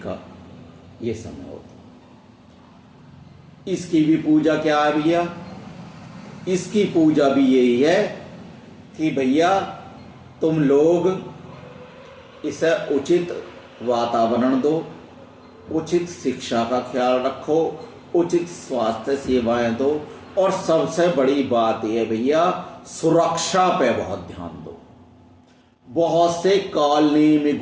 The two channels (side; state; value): both; identical; correlation 1.00